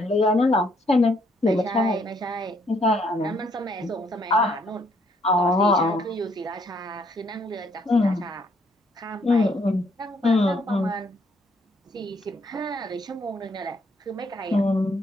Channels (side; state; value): both; normal; correlation 0.69